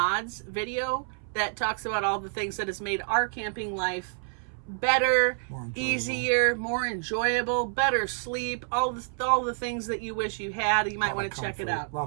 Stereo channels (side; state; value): left; silent; 59 dB below the other